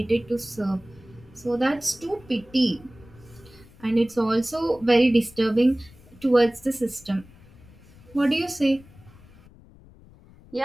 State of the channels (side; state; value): left; noise; rumble, 24 dB below the sound